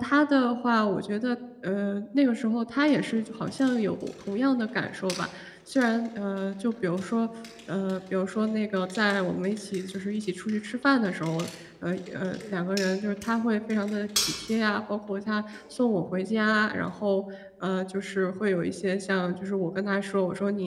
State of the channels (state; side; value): identical; both; correlation 1.00